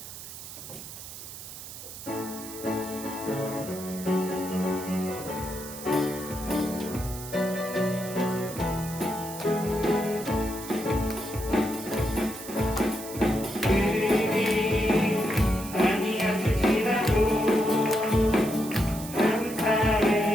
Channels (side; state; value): right; noise; hiss, 12 dB below the sound